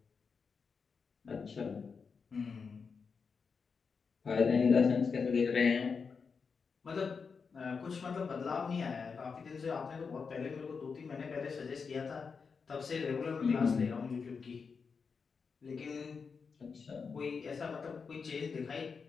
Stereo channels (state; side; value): quieter; right; 5.4 dB